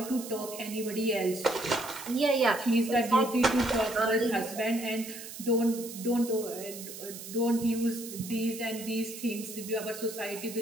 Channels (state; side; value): noise; right; hiss, 12 dB below the sound